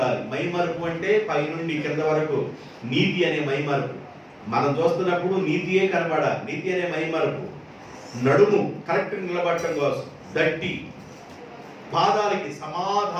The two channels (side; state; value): both; identical; correlation 1.00